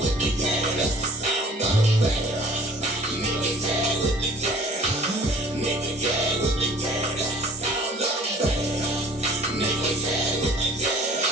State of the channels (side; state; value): both; normal; correlation 0.51